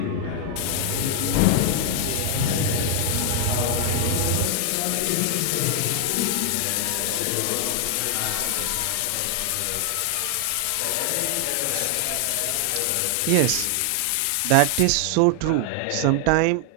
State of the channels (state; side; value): different; both; correlation 0.00